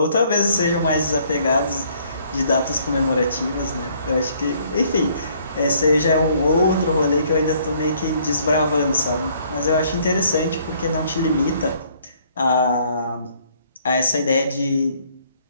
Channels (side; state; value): both; inverted; correlation -0.63